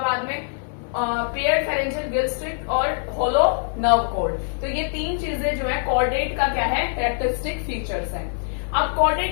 में। पेयर्ड फेरेंजियल गिल स्लिट और होलो नर्व कॉर्ड, तो ये 3 चीजें जो है कॉर्डेट का क्या है, कैरेक्टरिस्टिक फीचर्स हैं। अब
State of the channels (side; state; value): right; silent; digital silence